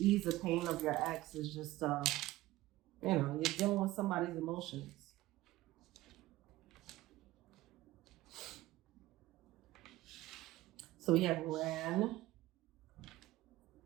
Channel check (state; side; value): quieter; left; 17.1 dB